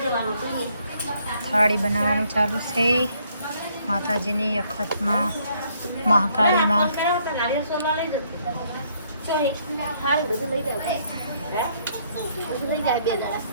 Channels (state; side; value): inverted; both; correlation -0.68